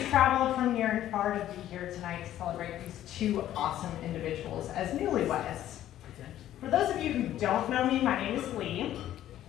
traveled from near and far to be here tonight to celebrate these two awesome individuals as newlyweds. For those of you who don't know me, my name is Leigh.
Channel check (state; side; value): quieter; right; 12.5 dB